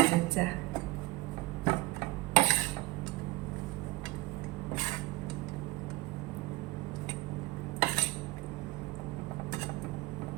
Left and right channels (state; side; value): quieter; left; 21.1 dB